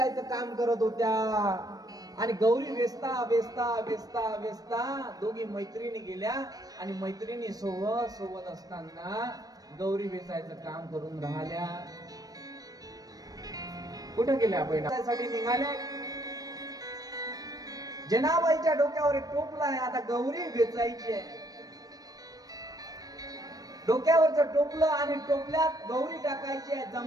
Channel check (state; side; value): late; left; 0.18 ms